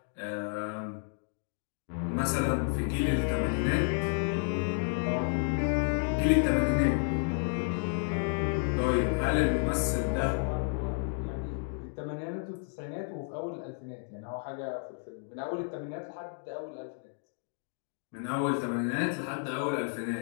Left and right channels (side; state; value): right; silent; digital silence